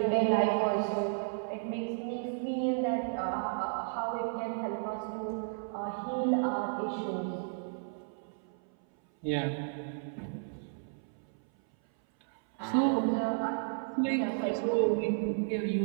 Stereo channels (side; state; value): left; silent; 56 dB below the other